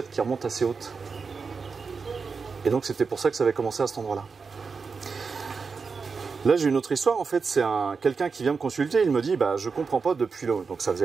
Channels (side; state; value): left; quieter; 5.0 dB